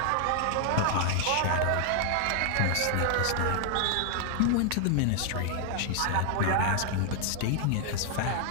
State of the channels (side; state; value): both; different; correlation 0.00